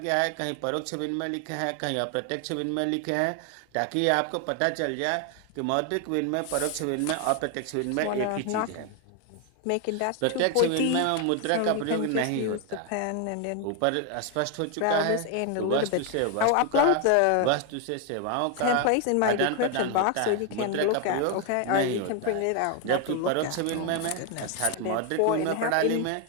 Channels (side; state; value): both; different; correlation 0.01